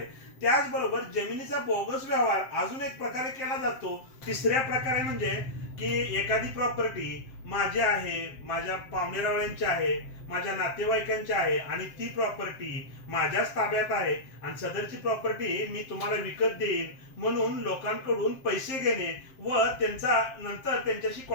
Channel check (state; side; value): late; right; 7.6 ms